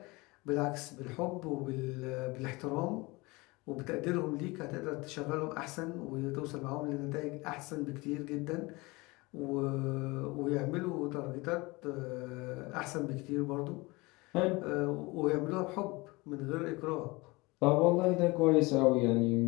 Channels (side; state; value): right; quieter; 24.0 dB